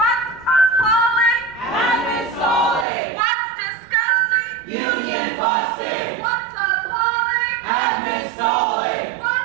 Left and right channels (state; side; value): drops out; left; at 2.9 s